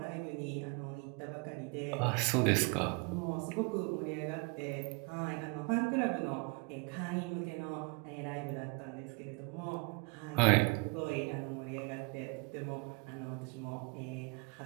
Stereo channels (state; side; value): quieter; left; 30.9 dB